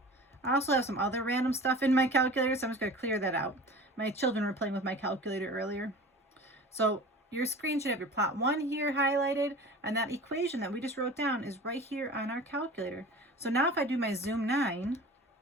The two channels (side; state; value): both; normal; correlation 0.38